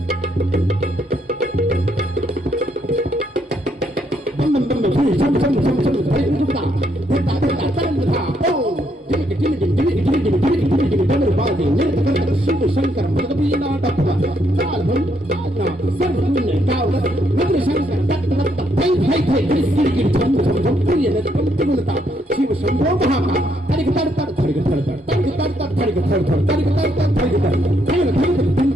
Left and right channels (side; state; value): both; normal; correlation 0.74